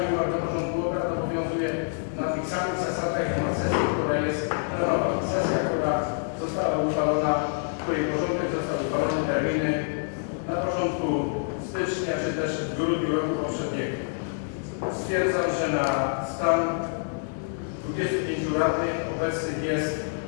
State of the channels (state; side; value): silent; right; digital silence